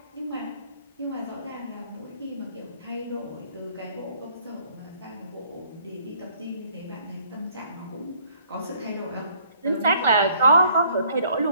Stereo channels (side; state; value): both; inverted; correlation -0.61